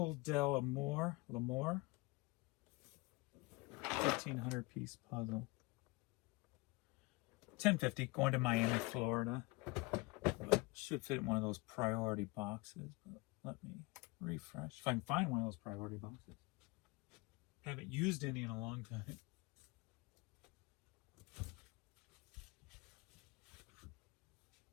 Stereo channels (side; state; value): right; quieter; 24.1 dB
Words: de l'Amour. 1,500 piece puzzle. $10.50, going to Miami, Florida. Should fit in one of those priority boxes. But let me refresh. If I can find one of those priority boxes. Haven't used any in a long time.